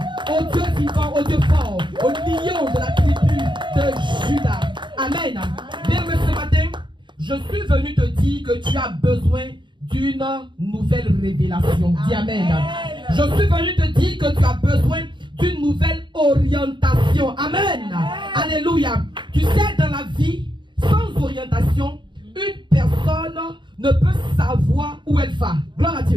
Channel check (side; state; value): left; late; 0.23 ms